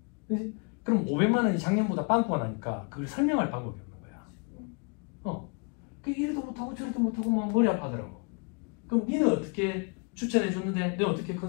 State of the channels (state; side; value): quieter; right; 34.7 dB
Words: 그치? 그럼 500만 원이 작년보다 빵꾸가 나니까 그걸 설명할 방법이 없는 거야. 그 이래도 못하고 저래도 못하고 막 머리 아파하더라고. 그럼 니는 어떻게 추천해 줬는데, 너 어떻게